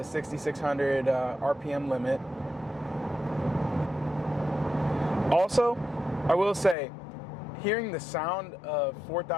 6,600 RPM limit. Also, I will say, hearing the sound of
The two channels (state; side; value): drops out; right; at 6.8 s